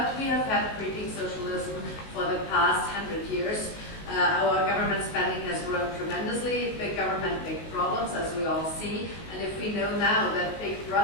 we have had creeping socialism for the past 100 years. Our government spending has grown tremendously. Big government, big problems, as we all see. And if we know now that big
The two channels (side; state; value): right; late; 18 ms